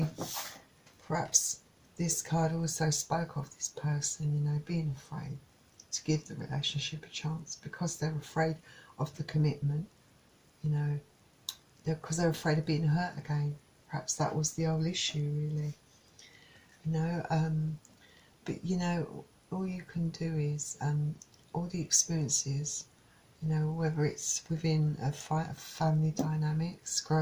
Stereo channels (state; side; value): identical; both; correlation 1.00